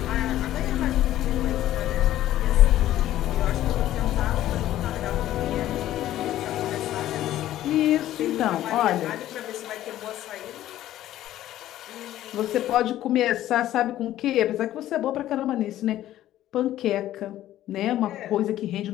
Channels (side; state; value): right; quieter; 13.4 dB